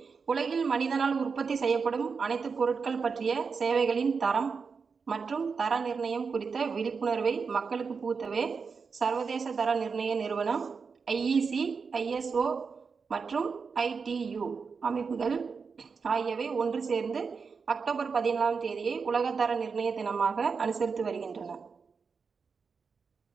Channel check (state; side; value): quieter; left; 5.3 dB